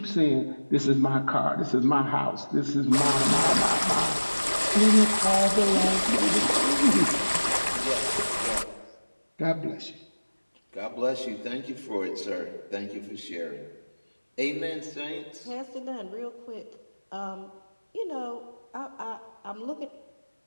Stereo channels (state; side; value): inverted; both; correlation -1.00